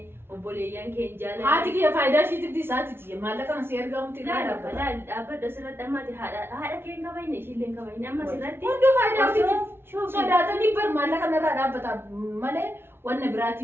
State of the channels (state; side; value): late; left; 0.11 ms